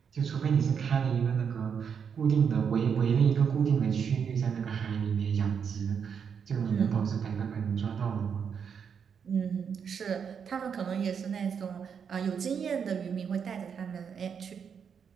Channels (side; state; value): left; quieter; 7.0 dB